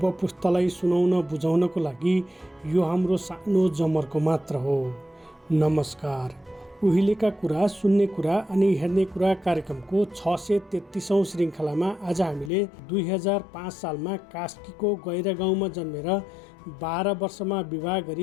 पुस्तालाई सुनाउन बुझाउनको लागि यो हाम्रो सानो जमर्को मात्र हो। नमस्कार। उहिलेका कुरा, सुन्ने कुरा अनि हेर्ने कुरा कार्यक्रमको 633औं श्रृङ्खलामा आज हामीले 2005 सालमा कास्कीको गैरा गाउँमा जन्मेर 12 वर्षमा विवाह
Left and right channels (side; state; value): right; drops out; at 12.5 s